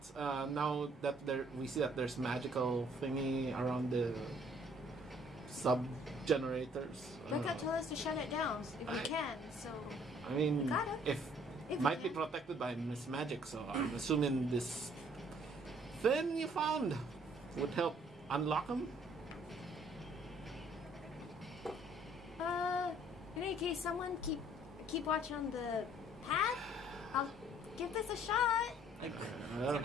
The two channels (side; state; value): both; normal; correlation 0.60